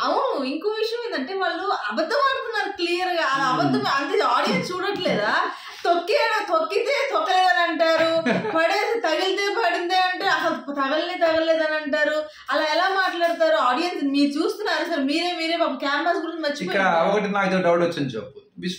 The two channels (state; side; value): identical; both; correlation 1.00